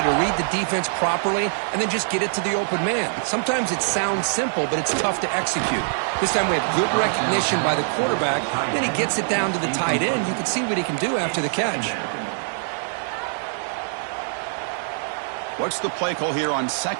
to read the defense properly and then just get it to the open man. Sometimes it sounds simple, but it's tough to execute. This time we have good recognition by the quarterback. Then he gets it down to the tight end. You can see what he can do after the catch. What's the play call here on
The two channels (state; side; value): silent; left; digital silence